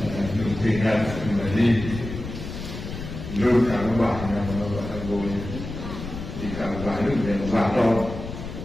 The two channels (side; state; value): left; noise; rumble, 9 dB below the sound